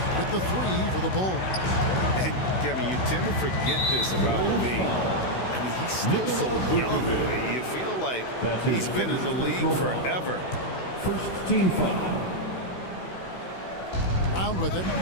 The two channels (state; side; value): late; right; 16 ms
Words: with the three for the Bulls. And Kevin, you tend to forget this about Levine. I mean, he's still so young. You feel like he's been in the league forever. First team foul. Brown with it,